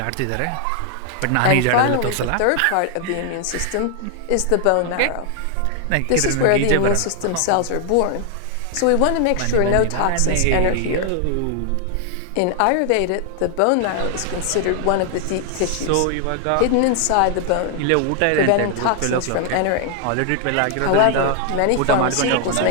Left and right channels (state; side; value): different; both; correlation 0.00